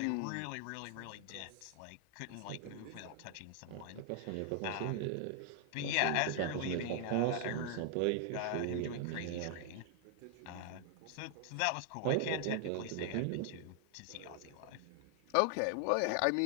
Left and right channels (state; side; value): different; both; correlation 0.00